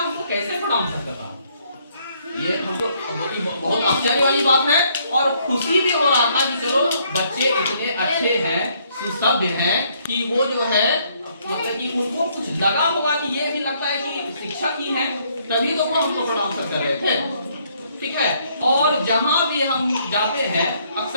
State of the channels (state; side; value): inverted; both; correlation -0.68